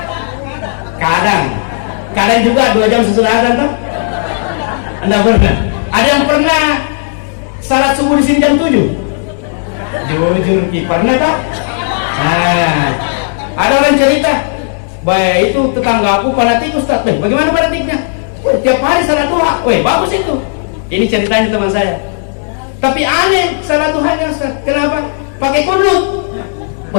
Kadang juga 2 jam sesudah azan tuh. Anda pernah? Ada yang pernah salat subuh di sini jam 7? Jujur pernah tak? Nah, ada orang cerita, baik itu tetanggaku fanatik Ustaz. Bagaimana fanatiknya? Tiap hari salat duha. Bagus itu. Ini ceritanya teman saya. Tapi aneh salat duhanya Ustaz. Kenapa? Pakai kunut.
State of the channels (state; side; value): silent; right; digital silence